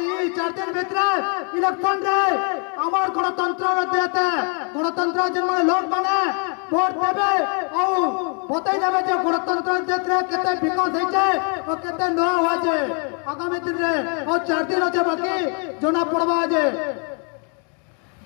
4 दिन भीतर इलेक्शन रे আমার গণতন্ত্র দেতে গণতন্ত্র যে মানে লোক মানে ভোট দেবে ও বতাই যাবে যে গণতন্ত্র দেতে কেতে বিকাশ হইছে ও কেতে ন হইছে আগামী দিনে ও 4 দিন আছে বাকি জনা পড়বা যে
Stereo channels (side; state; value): right; quieter; 39.6 dB